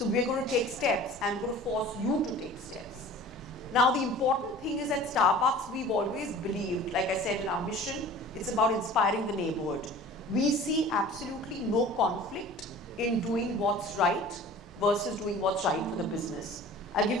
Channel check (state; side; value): normal; both; correlation 0.43